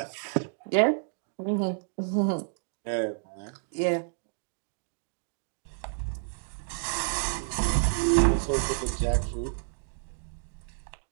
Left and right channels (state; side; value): silent; left; digital silence